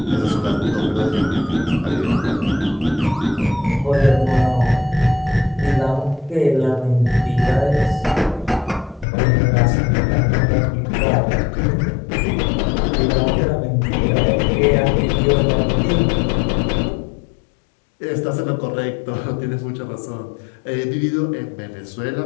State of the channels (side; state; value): right; drops out; at 9.1 s